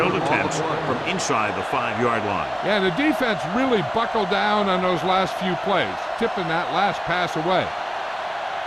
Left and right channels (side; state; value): both; identical; correlation 1.00